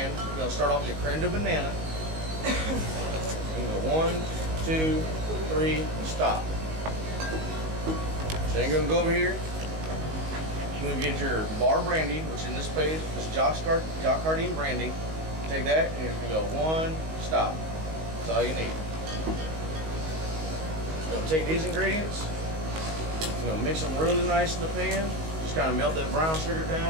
you're going to start off with your creme de banana. You go 1, 2, 3, and stop. So you're going to go over here. You're going to get your bar brandy, which in this page is Jacquardine brandy. Take that and you're going to go 1, stop. That's all you need. You're going to take these ingredients. You're going to mix them really nice in the pan. Just kind of melt that brown sugar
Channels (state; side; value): late; left; 19 ms